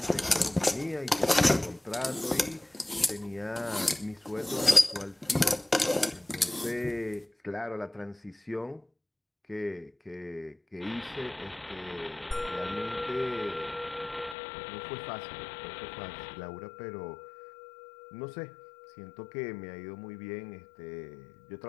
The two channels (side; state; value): right; drops out; at 14.4 s